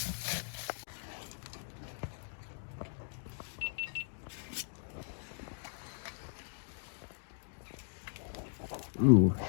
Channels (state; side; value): silent; right; digital silence